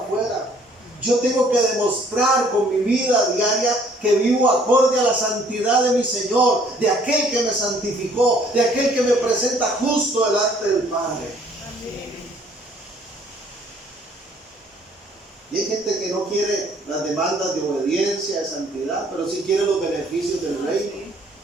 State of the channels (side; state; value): both; normal; correlation 0.60